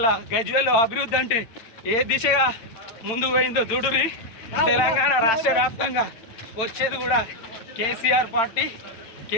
గజ్వేల్లో అభివృద్ధి అంటే ఏ దిశగా ముందుకు పోయిందో చూడురి. తెలంగాణ రాష్ట్ర వ్యాప్తంగా వచ్చేది కూడా కేసీఆర్ పార్టీ.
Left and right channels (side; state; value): right; late; 8.9 ms